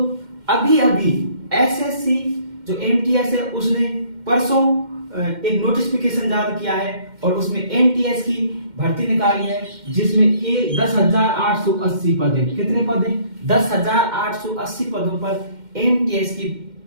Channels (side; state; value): left; late; 2.1 ms